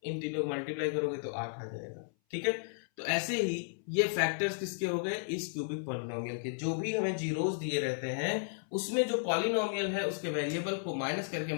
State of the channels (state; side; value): silent; right; 55 dB below the other